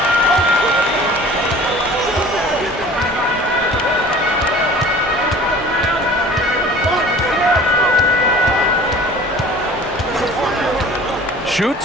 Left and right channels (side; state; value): both; normal; correlation 0.45